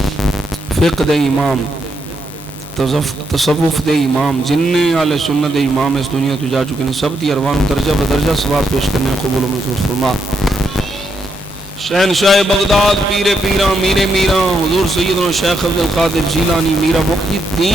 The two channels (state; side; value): normal; both; correlation 0.79